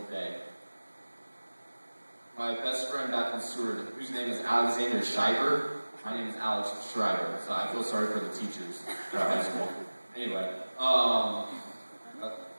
day. My best friend back in Seward, whose name is Alexander Shriver, my name is Alex Shriver, so I feel sorry for the teachers at high school. Anyway, wow,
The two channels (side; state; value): both; inverted; correlation -1.00